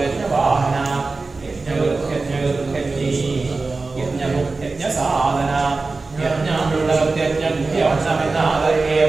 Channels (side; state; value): left; quieter; 3.7 dB